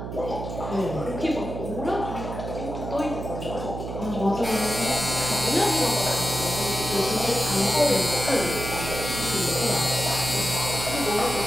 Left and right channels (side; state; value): right; noise; hum, 7 dB below the sound